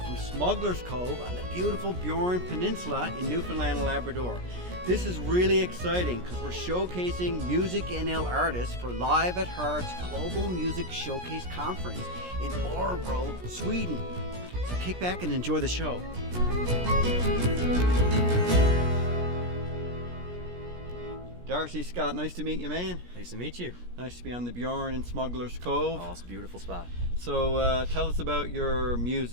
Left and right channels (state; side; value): late; left; 17 ms